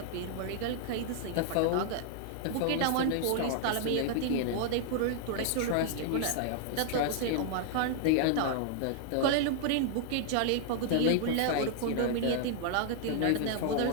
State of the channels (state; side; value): different; both; correlation -0.01